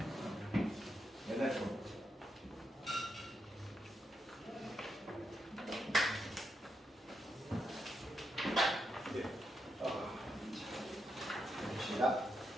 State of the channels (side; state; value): both; normal; correlation 0.83